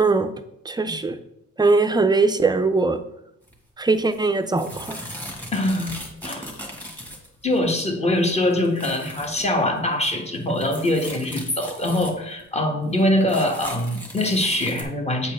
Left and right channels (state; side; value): normal; both; correlation 0.55